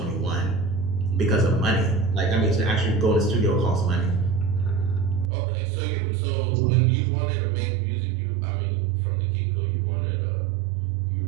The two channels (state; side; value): drops out; left; at 5.3 s